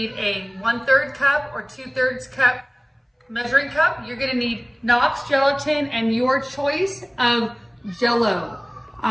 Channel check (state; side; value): identical; both; correlation 1.00